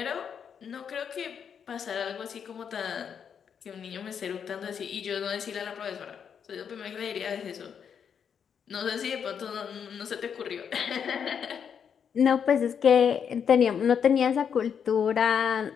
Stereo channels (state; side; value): quieter; right; 7.5 dB